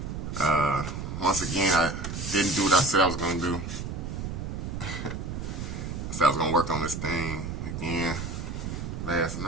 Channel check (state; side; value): noise; right; rumble, 5 dB below the sound